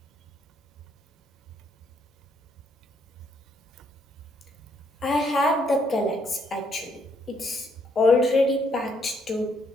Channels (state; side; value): normal; both; correlation 0.71